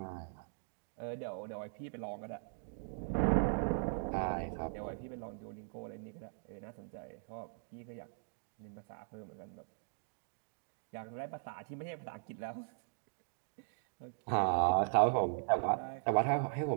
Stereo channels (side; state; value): left; silent; digital silence